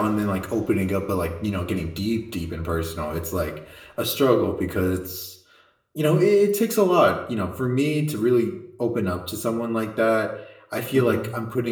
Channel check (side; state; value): both; identical; correlation 1.00